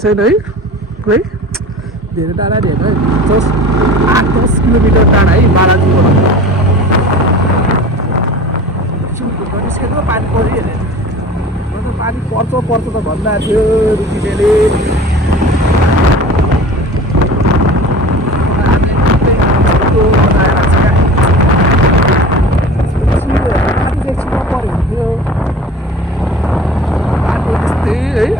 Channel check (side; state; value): both; normal; correlation 0.39